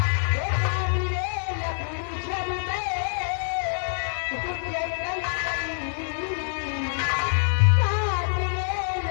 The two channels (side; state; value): right; silent; digital silence